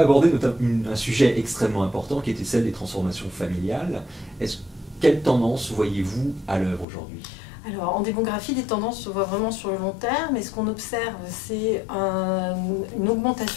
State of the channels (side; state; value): right; drops out; at 6.9 s